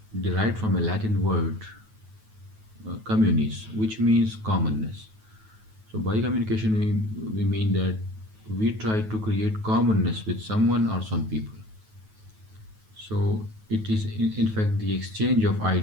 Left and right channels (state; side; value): late; left; 9.3 ms